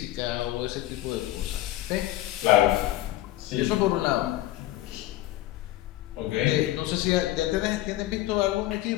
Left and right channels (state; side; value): quieter; right; 15.2 dB